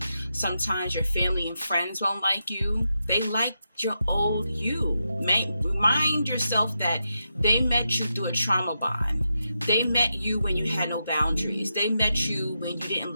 Sometimes your family and friends won't like you. They like your old you. Remind yourself that they met you through a trauma bond. They met you when you had no boundaries. They met you when you didn't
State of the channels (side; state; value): both; inverted; correlation -0.86